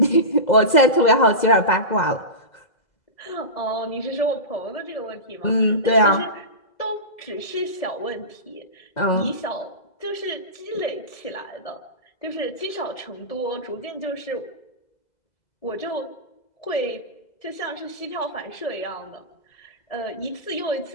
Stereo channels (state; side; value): late; right; 2.0 ms